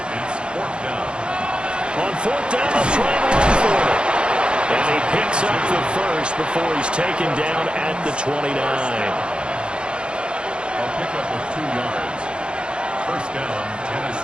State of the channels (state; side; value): late; left; 0.054 ms